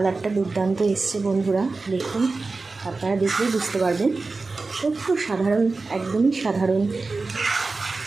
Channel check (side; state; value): left; quieter; 3.8 dB